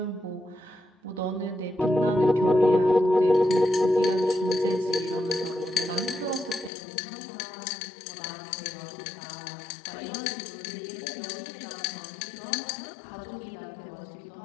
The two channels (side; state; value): right; drops out; at 6.7 s